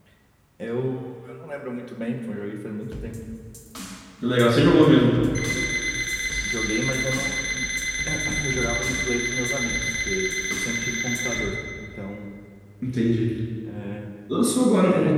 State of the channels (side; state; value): both; identical; correlation 1.00